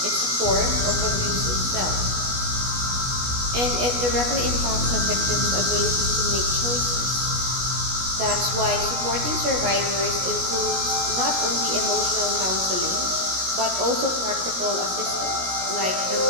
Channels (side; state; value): left; late; 16 ms